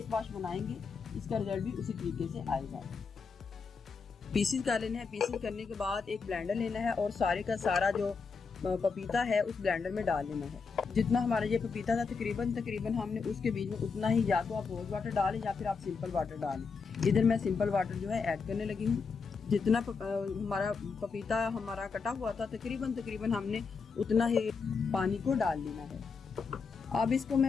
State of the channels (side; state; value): right; quieter; 5.1 dB